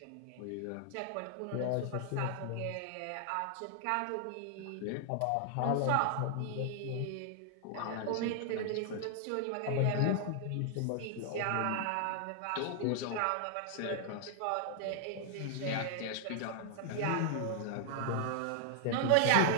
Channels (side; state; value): both; different; correlation 0.00